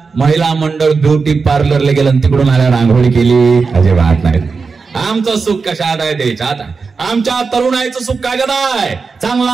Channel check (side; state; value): left; quieter; 4.7 dB